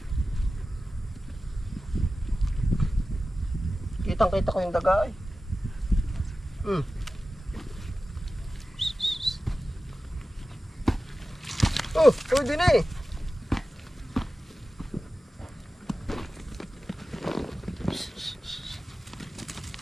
Kitang-kita ko yung daga ay. Pwede na eh.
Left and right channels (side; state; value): both; normal; correlation 0.95